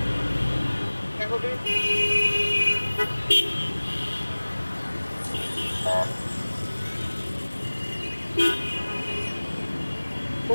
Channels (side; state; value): both; inverted; correlation -1.00